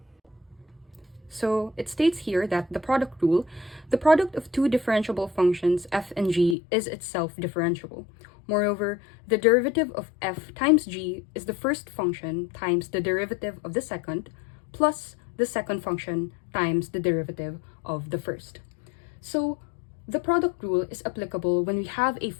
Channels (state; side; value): drops out; right; at 6.6 s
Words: So it states here that the product rule, the product of two differentiable functions f and g is itself differentiable. Moreover, the derivative of f times g is the first function times the derivative of the second plus the second function times the derivative of the first. So the product rule is applicable when we have a